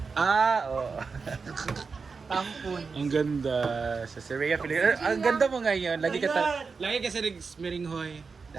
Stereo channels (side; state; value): left; quieter; 4.9 dB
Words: Oo. tampon. Ang ganda. Sa Syria, ang ganda mo ngayon. Lagi ka sa Smiringhoy.